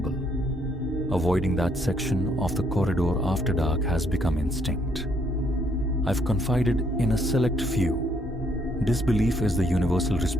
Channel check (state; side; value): normal; both; correlation 0.70